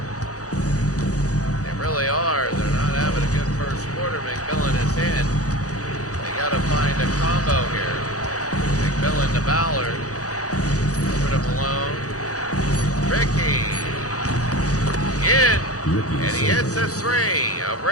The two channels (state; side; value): late; right; 0.66 ms